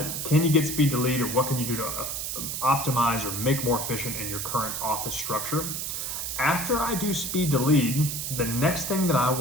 Can you get speed to lead, or what can you do to optimize or make more efficient in your current office structure? After I do speed to lead, the next thing that I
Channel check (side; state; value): right; noise; hiss, 3 dB below the sound